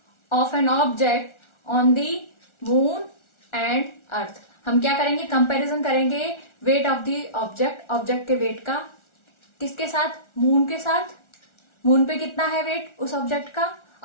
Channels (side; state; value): right; late; 1.4 ms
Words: of an object on the moon and earth. हम क्या करेंगे, कंपैरिजन करेंगे weight of the object, object के वेट का, किसके साथ, मून के साथ। मून पे कितना है वेट उस ऑब्जेक्ट का,